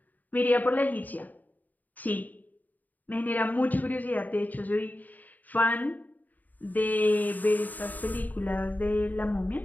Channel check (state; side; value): late; right; 0.082 ms